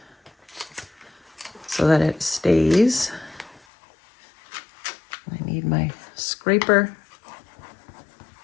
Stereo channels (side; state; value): right; drops out; at 3.6 s